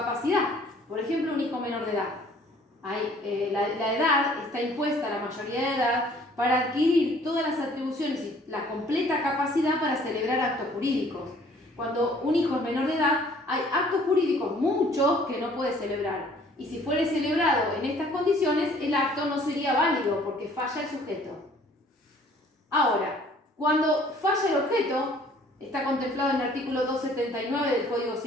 Por ejemplo, un hijo menor de edad. La edad está impuesta, la mayoría de edad, para adquirir todas las atribuciones y la completa capacidad para celebrar actos jurídicos. Cuando un hijo es menor de edad, hay actos jurídicos muchos que no puede celebrar. Y si fuere celebrado en estas condiciones, el acto no sería válido porque falla el sujeto. Ahora, Cuando falla el objeto, está contemplado en el artículo 279 del Código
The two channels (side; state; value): both; normal; correlation 0.56